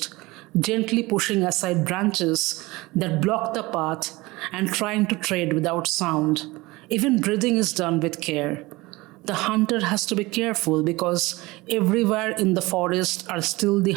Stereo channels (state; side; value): quieter; left; 21.7 dB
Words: gently pushing aside branches that block the path and trying to tread without sound. Even breathing is done with care. The hunter has to be careful because everywhere in the forest are still the